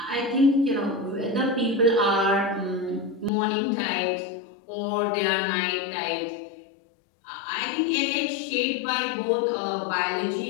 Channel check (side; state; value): right; drops out; at 3.3 s